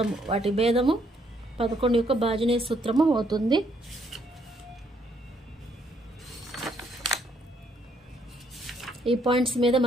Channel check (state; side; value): normal; both; correlation 0.70